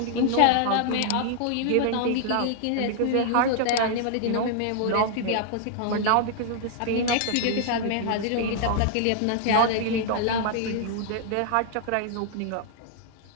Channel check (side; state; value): both; different; correlation -0.01